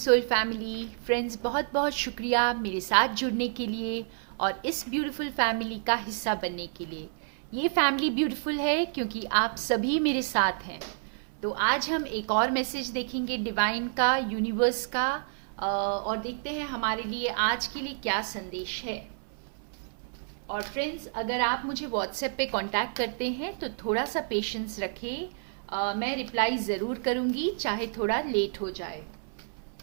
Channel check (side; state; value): left; silent; 58 dB below the other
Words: family friends, बहुत बहुत शुक्रिया मेरे साथ जुड़ने के लिए और इस ब्यूटीफुल फैमिली का हिस्सा बनने के लिए। ये फैमिली ब्यूटीफुल है क्योंकि आप सभी मेरे साथ हैं। तो आज हम एक और मैसेज देखेंगे डिवाइन का, यूनिवर्स का, और देखते हैं हमारे लिए आज के लिए क्या संदेश है। और फ्रेंड्स, अगर आप मुझे व्हाट्सएप पे कांटेक्ट करते हैं तो थोड़ा सा पेशेंस रखें। मैं रिप्लाई ज़रूर करूँगी, चाहे थोड़ा लेट हो जाए।